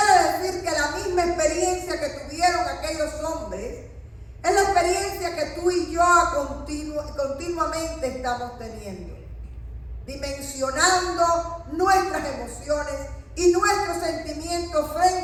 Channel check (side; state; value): both; identical; correlation 1.00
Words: decir que la misma experiencia que tuvieron aquellos hombres es la experiencia que tú y yo continuamente estamos teniendo, dimensionando nuestras emociones y nuestros sentimientos